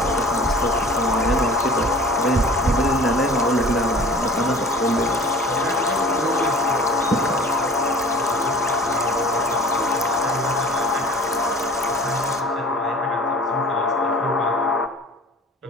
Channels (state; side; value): normal; both; correlation 0.44